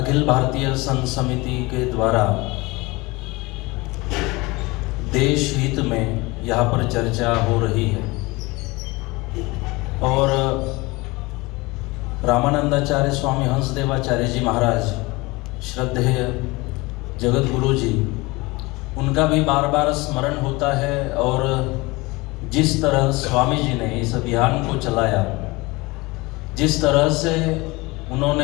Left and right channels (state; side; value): quieter; right; 23.3 dB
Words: भारतीय संत समिति के द्वारा देश हित में यहाँ पर चर्चा हो रही है और रामानंदाचार्य स्वामी हंसदेवाचार्य जी महाराज श्रद्धेय जगत गुरु जी, उनका भी बार बार स्मरण होता है। और जिस तरह स्वामी जी ने इस अभियान को चलाया, जिस तरह से